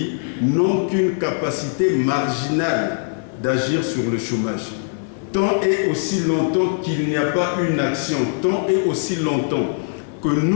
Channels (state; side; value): silent; right; 64 dB below the other